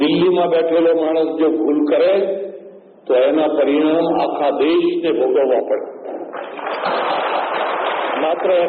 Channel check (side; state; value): both; identical; correlation 1.00